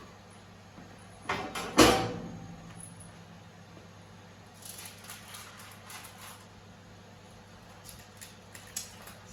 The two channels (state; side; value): identical; both; correlation 1.00